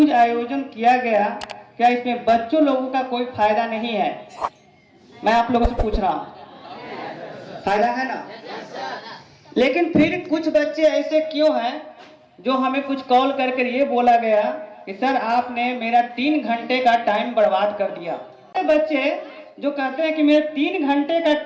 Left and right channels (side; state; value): both; identical; correlation 1.00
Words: आयोजन किया गया, क्या इसमें बच्चों लोगों का कोई फायदा नहीं है? मैं आप लोगों से पूछ रहा हूँ, फायदा है ना? लेकिन फिर कुछ बच्चे ऐसे क्यों हैं जो हमें कुछ कॉल करके ये बोला गया कि कि सर आपने मेरा 3 घंटे का टाइम बर्बाद कर दिया। बच्चे जो कहते हैं कि मेरे 3 घंटे का